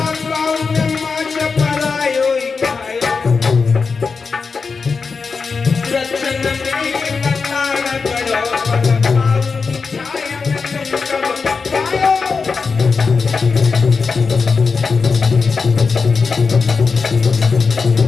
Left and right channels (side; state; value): right; quieter; 4.9 dB